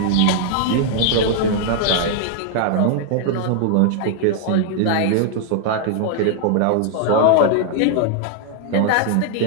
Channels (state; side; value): different; both; correlation 0.00